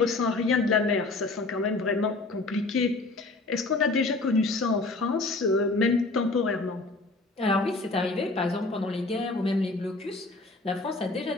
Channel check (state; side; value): quieter; right; 3.3 dB